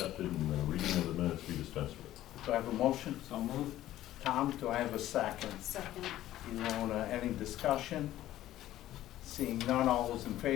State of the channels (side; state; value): right; quieter; 13.9 dB